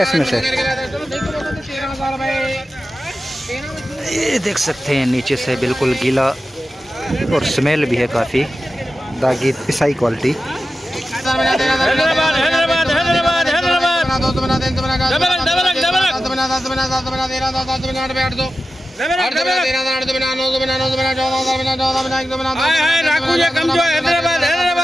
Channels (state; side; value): normal; both; correlation 0.93